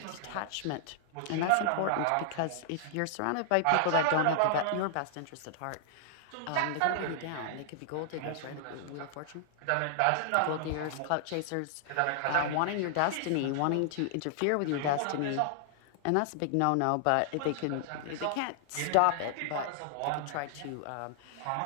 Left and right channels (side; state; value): both; different; correlation 0.00